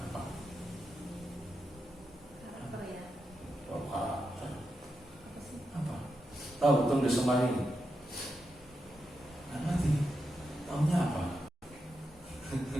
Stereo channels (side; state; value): both; normal; correlation 0.86